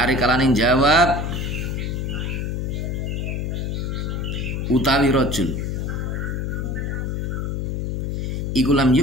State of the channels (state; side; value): noise; left; hum, 1 dB below the sound